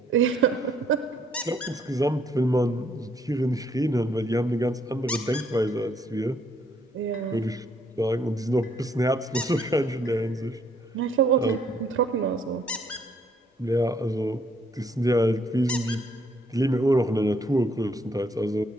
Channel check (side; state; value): both; normal; correlation 0.68